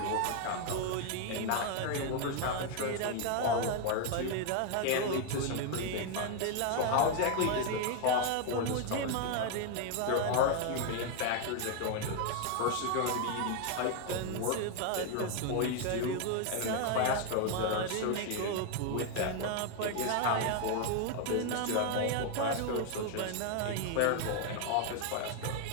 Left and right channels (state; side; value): different; both; correlation 0.01